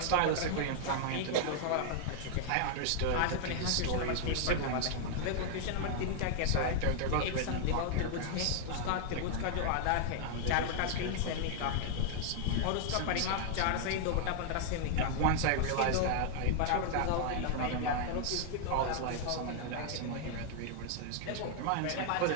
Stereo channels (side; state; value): both; different; correlation -0.01